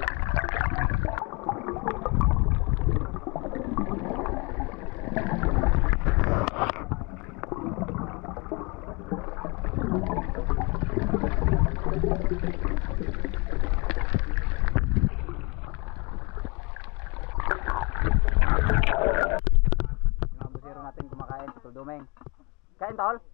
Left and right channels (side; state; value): right; quieter; 28.1 dB